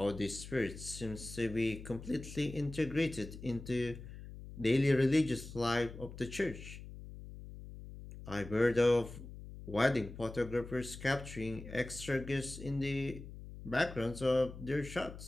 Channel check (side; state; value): left; noise; hum, 13 dB below the sound